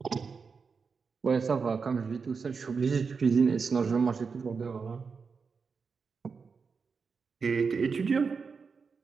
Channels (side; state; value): left; quieter; 5.3 dB